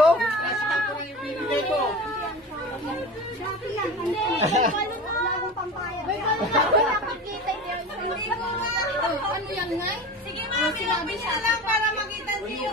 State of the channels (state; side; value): normal; both; correlation 0.32